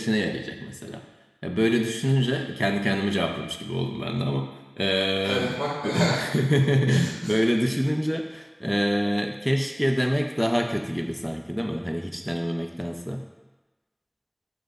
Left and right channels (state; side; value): identical; both; correlation 1.00